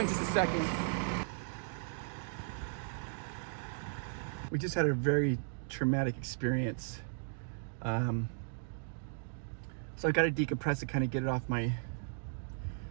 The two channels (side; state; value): left; silent; digital silence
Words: in just a second. We just had a very traumatic experience. So I got to decompress it, kind of get it off my...